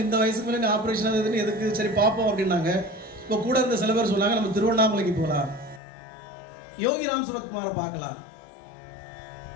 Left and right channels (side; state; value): right; drops out; at 5.8 s